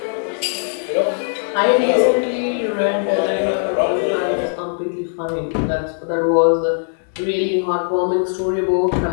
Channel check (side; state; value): right; silent; digital silence